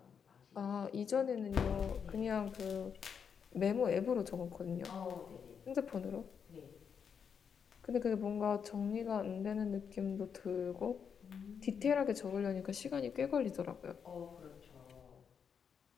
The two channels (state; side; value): quieter; right; 7.0 dB